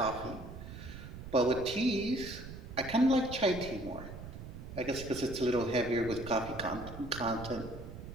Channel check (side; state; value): right; noise; rumble, 11 dB below the sound